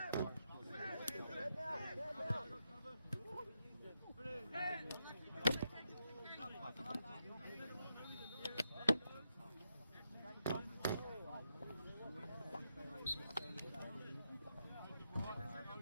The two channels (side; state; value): both; inverted; correlation -0.83